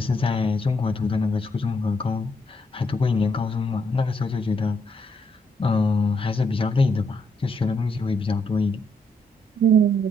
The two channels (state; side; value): normal; both; correlation 0.75